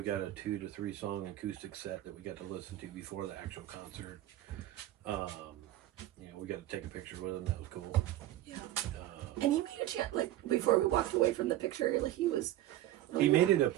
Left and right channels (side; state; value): left; quieter; 14.3 dB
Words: got a 2 to 3 song acoustic set that we got to listen to before the actual concert. You know, we got to take a picture with him. That was cool. Yeah. And he made a chance, like, before we walked away from the picture, like, he was... He made it a